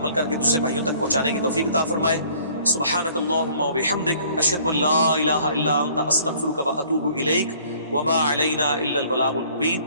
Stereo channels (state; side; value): inverted; both; correlation -0.56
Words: کر کے دوسرے بھائیوں تک پہنچانے کی توفیق عطا فرمائے. سبحانک اللہم و بحمدک, اشہد ان لا الہ الا انت, استغفرک و اتوب الیک, وما علینا الا البلاغ المبین.